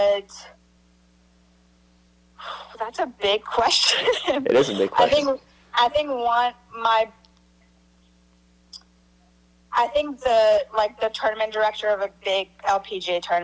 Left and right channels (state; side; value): identical; both; correlation 1.00